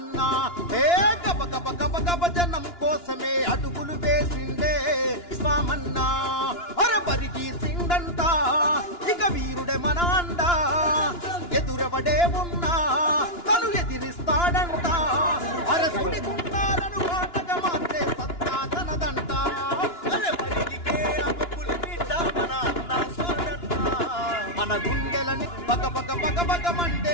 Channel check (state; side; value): late; right; 2.9 ms